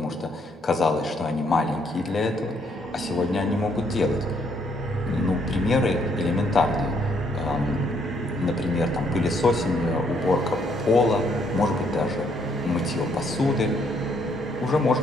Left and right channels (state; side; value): normal; both; correlation 0.70